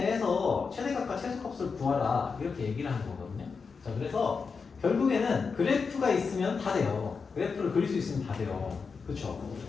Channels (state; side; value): quieter; right; 5.2 dB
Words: 최대값과 최소값을 구하라. 이렇게 얘기를 하는 거거든요. 자, 그래서 결국에는 그래프가 있으면 다 돼요. 그래프를 그릴 수 있으면 다 돼요. 그쵸?